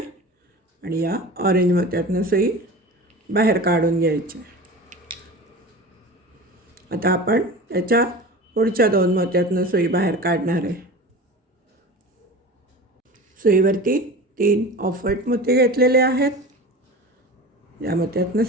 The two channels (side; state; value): both; normal; correlation 0.34